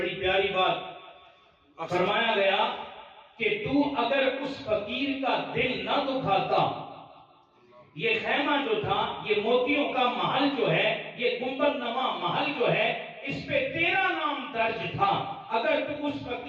پیاری بات فرمایا گیا کہ تو اگر اس فقیر کا دل نہ دکھاتا، یہ خیمہ جو تھا، یہ موتیوں کا محل جو ہے، یہ گنبد نما محل جو ہے، اس پہ تیرا نام درج تھا، اگر تو اس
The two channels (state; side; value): identical; both; correlation 1.00